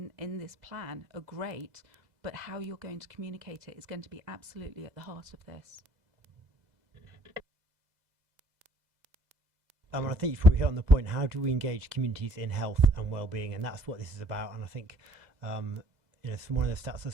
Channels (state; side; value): late; left; 2.0 ms